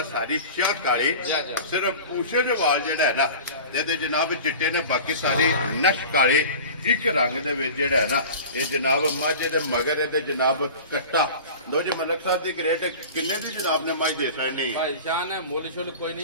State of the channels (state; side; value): inverted; both; correlation -0.37